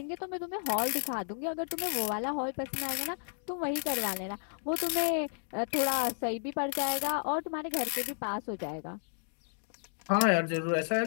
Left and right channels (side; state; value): right; silent; digital silence